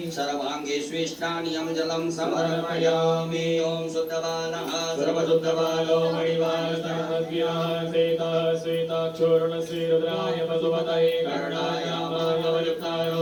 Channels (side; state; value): both; identical; correlation 1.00